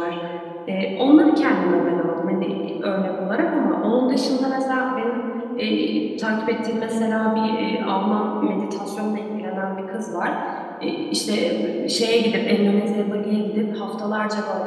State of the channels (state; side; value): identical; both; correlation 1.00